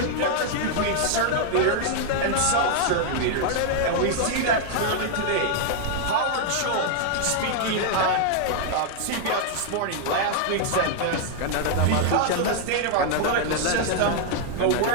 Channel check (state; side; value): different; both; correlation 0.00